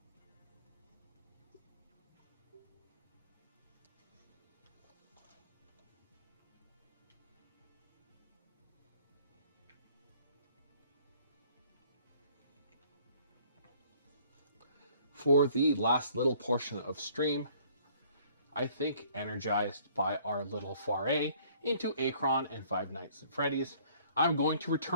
For the last little portion of stream, I think energized by our little foray into Akron and Five Nights at Freddy's, I'm going to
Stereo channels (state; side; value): inverted; both; correlation -0.58